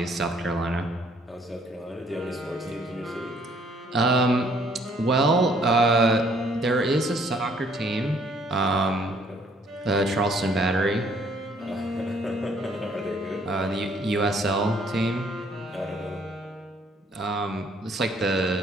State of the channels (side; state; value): both; normal; correlation 0.63